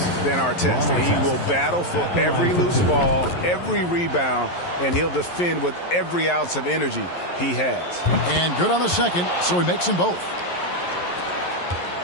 than Artest. He will battle for every loose ball, every rebound, and he'll defend with every ounce of energy he has. And good on the second, so he makes them both.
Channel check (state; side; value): late; right; 11 ms